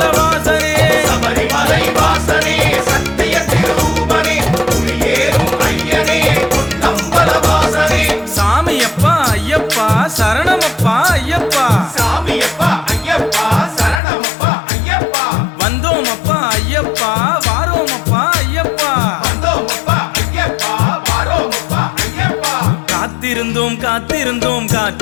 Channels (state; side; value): drops out; right; at 14.0 s